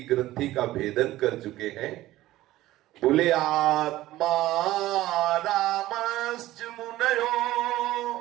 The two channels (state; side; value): quieter; left; 15.9 dB